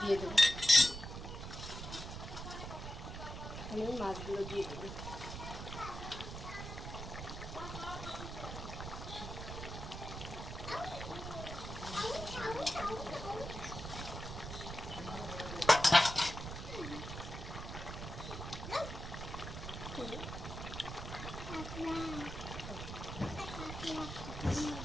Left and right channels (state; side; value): noise; right; rumble, 7 dB below the sound